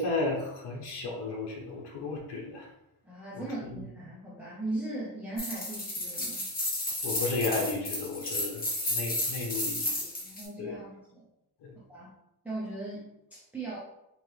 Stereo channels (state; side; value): normal; both; correlation 0.12